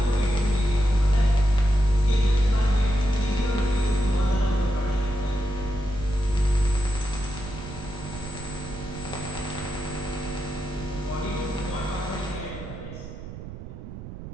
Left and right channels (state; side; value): noise; right; rumble, 11 dB below the sound